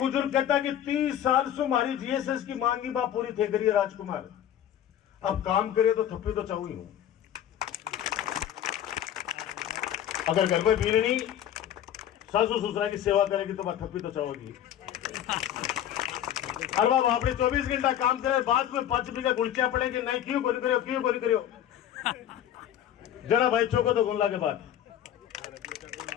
कहता है कि 30 साल से हमारी जीएसएस की मांगी बात पूरी थे करिए राजकुमार, अब काम करे तो थप्पी तो चाहू ही हूं। अगर घर में बीरनी सासू ससुरा की सेवा करेगी तो बात थप्पी तो चाहोगी। अरे बाबा आपने 24 घंटा काम करे, बाद में 5 रुपये का गुलचा पड़ेगी, नहीं क्यों कोई करो, क्यों कोई करो। जरा भाई चौको तो गुल्ला के बाद।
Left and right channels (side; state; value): right; quieter; 10.8 dB